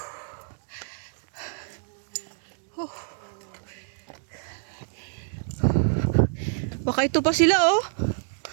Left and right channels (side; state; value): left; silent; digital silence